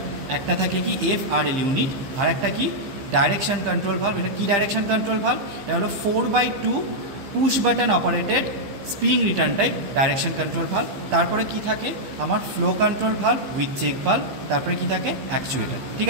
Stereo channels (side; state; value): left; late; 15 ms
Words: একটা থাকে কি FRL ইউনিট, আর একটা কি ডাইরেকশন কন্ট্রোল ভালভ। এটা কি ডাইরেকশন কন্ট্রোল ভালভ? এটা হলো 4/2 push button operated spring return type direction control valve. তারপরে কি থাকে আমার flow control valve with check valve. তারপরে কি থাকে অ্যাকচুয়েটার, ঠিক